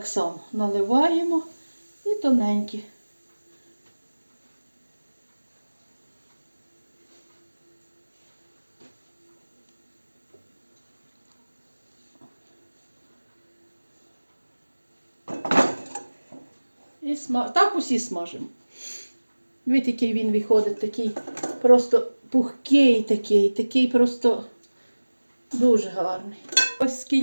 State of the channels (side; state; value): both; inverted; correlation -1.00